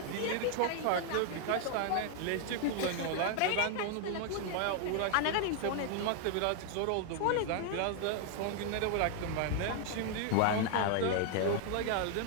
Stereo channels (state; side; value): different; both; correlation 0.00